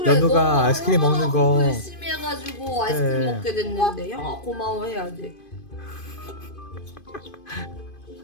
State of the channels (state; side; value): late; right; 2.5 ms